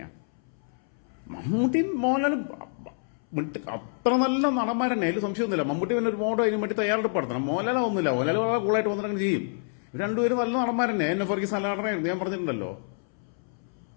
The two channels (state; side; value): silent; right; 60 dB below the other